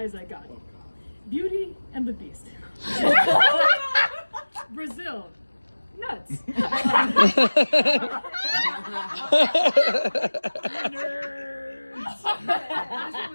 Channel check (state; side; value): inverted; both; correlation -1.00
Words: I got. Beauty and the Beast. Brazil. Nuts. Nerds. This one